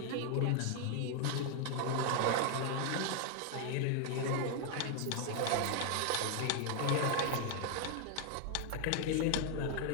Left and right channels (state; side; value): different; both; correlation 0.00